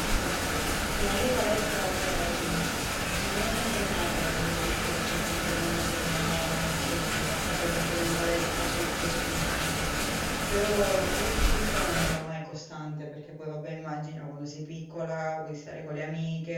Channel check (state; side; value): identical; both; correlation 1.00